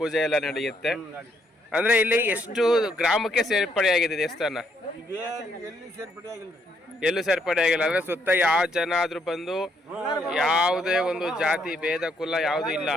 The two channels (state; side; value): normal; both; correlation 0.73